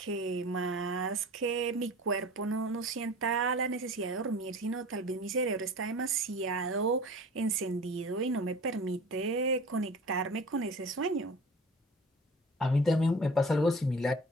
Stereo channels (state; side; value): normal; both; correlation 0.40